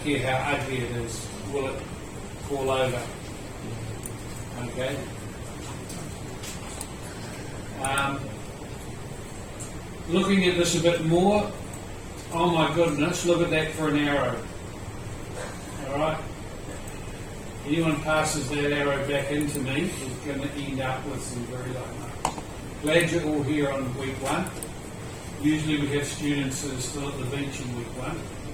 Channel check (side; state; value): both; identical; correlation 1.00